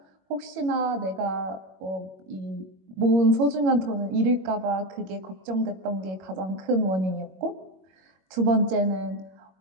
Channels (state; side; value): late; left; 21 ms